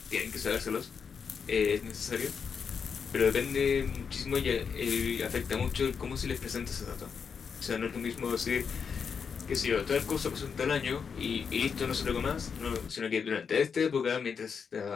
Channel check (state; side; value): quieter; right; 6.3 dB